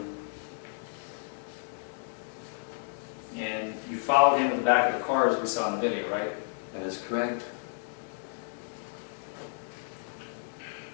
And you followed him to the back of the car as we saw in the video, right? That is correct.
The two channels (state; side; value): silent; right; 57 dB below the other